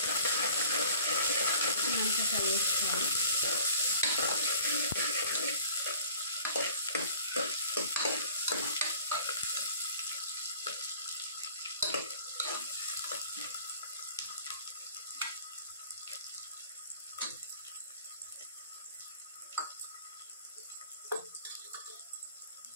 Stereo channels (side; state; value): both; inverted; correlation -0.48